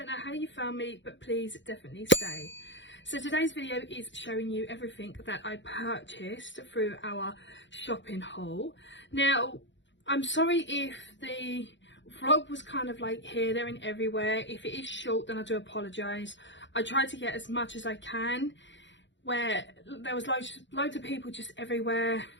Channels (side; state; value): right; late; 0.53 ms